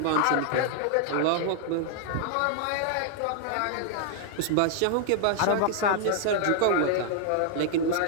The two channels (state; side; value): different; both; correlation 0.00